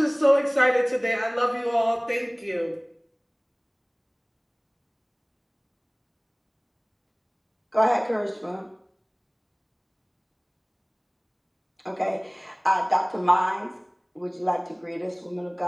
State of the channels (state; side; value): identical; both; correlation 1.00